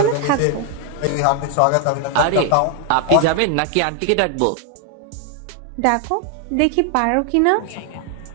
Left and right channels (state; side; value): different; both; correlation 0.00